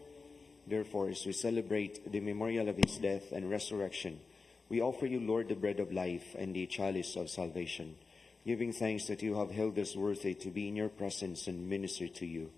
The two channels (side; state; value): right; quieter; 4.3 dB